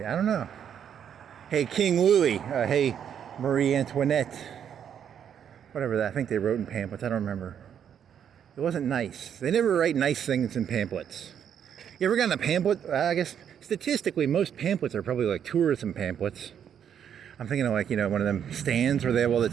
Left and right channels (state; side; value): quieter; left; 8.7 dB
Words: I don't know. Hey, King Louis. Hey, Marie Antoinette. Whatever that. I think they wrote in pamphlets. I don't remember. It wasn't nice. They never write nice things in pamphlets. You ever gotten a pamphlet? I guess statistically, most pamphlets are probably like tourism pamphlets. I'm thinking of like, you know, one of them stands where they have all the